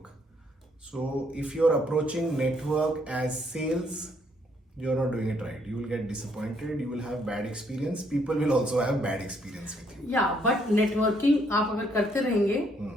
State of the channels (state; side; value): normal; both; correlation 0.69